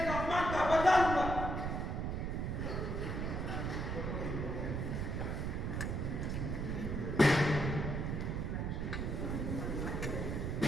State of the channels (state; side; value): noise; right; rumble, 1 dB below the sound